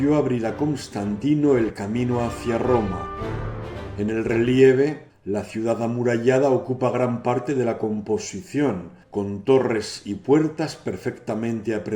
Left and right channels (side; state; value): both; identical; correlation 1.00